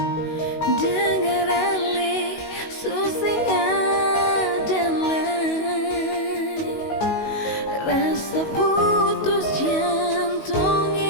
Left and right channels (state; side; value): late; right; 19 ms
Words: Dengar ale susing adalah rasa putus